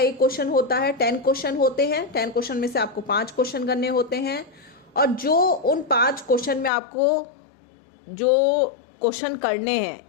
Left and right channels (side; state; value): right; drops out; at 6.7 s